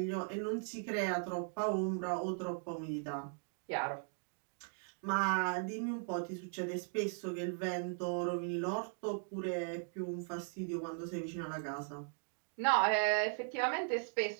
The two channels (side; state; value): left; silent; 52 dB below the other